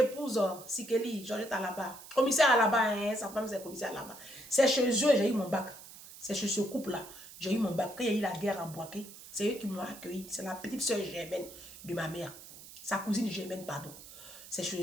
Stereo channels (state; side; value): noise; right; hiss, 16 dB below the sound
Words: Sikeli. Georgette à là-bas. Commissaire à là-bas, hein? Sa femme c'est commissaire à là-bas. C'est chez eux, j'ai eu mon bac. C'est chez ce couple-là. J'ai eu mon bac. Quand il y a eu la guerre à Boaké, c'est eux qui m'ont accueilli. C'est la petite soeur Germaine de ma mère. Sa cousine Germaine, pardon. C'est chez